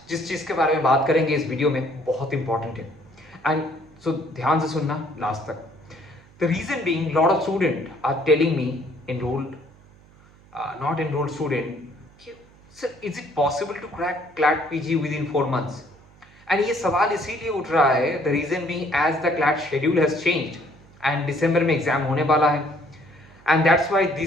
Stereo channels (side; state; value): right; noise; hum, 26 dB below the sound